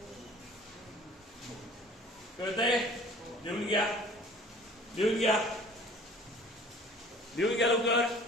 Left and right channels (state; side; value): normal; both; correlation 0.48